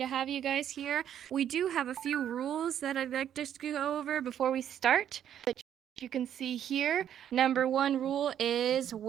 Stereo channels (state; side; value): quieter; left; 10.0 dB